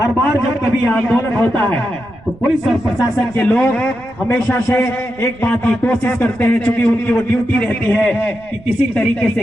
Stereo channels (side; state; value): right; noise; rumble, 23 dB below the sound